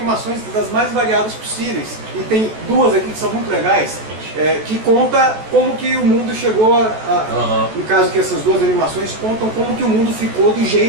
das mais variadas possíveis. E tem 2 aqui que são muito legais, que conta como que o mundo chegou no caso que essas 2 animações contam como que o mundo ficou do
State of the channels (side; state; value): left; late; 14 ms